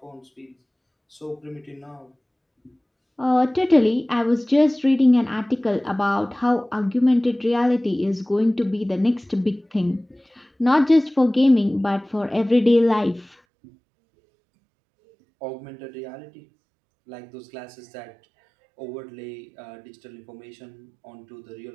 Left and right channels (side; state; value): left; drops out; at 13.4 s